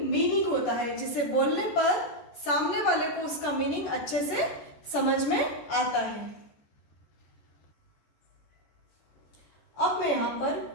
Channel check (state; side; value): late; right; 14 ms